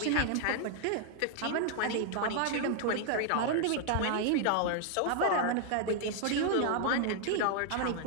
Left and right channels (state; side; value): different; both; correlation 0.00